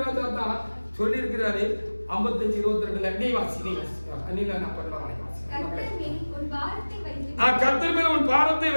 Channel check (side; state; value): both; inverted; correlation -1.00